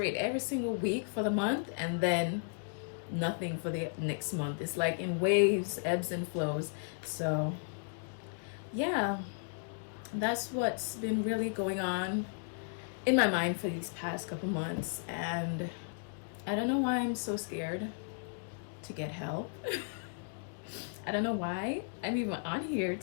every single week for the month and then nothing for the next month. It's like in waves, ebbs and flows. So yeah, that's what's been really going on in my mind for these past couple months. And I don't know why I'm so scared to get help. I don't know why I'm even on here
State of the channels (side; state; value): right; silent; digital silence